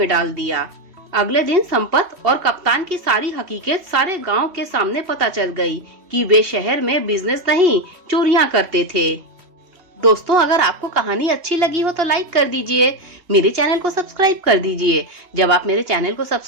डाल दिया। अगले दिन संपत और कप्तान की सारी हकीकत सारे गांव के सामने पता चल गई कि वे शहर में बिजनेस नहीं चोरियां करते थे। दोस्तों, अगर आपको कहानी अच्छी लगी हो तो लाइक कर दीजिए, मेरे चैनल को सब्सक्राइब कर दीजिए। जब आप मेरे चैनल को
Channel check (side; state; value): left; late; 2.8 ms